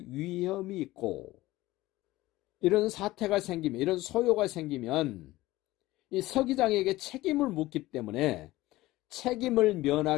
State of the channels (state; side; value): quieter; right; 17.8 dB